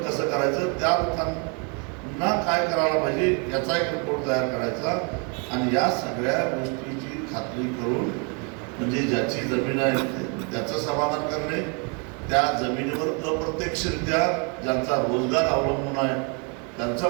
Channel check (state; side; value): quieter; left; 35.8 dB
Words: कसं करायचं, त्या लोकांना काय करायला पाहिजे याचा एक रिपोर्ट तयार करायचा. आणि या सगळ्या गोष्टीची खात्री करून म्हणजे ज्याची जमीन आहे त्याचं समाधान करणे, त्या जमिनीवर अप्रत्यक्षरित्या ज्यांचा रोजगार अवलंबून आहे त्यांचं